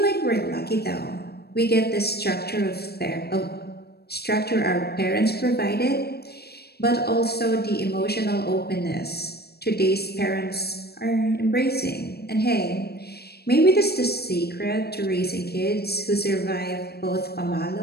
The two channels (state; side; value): late; right; 0.47 ms